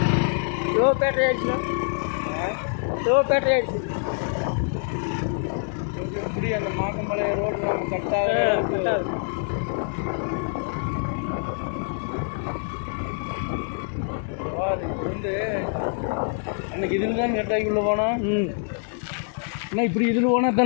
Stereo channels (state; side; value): silent; right; 62 dB below the other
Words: லோ பேட்டரி ஆயிடுச்சுண்ணா. லோ பேட்டரி ஆயிடுச்சு. எப்படி அந்த மாக்கமலை ரோடு கட்டாக வந்து அன்னைக்கு இதில் தான் கட்டாக்கி உள்ள போனோம். அண்ணா இப்படி இதில் போனால்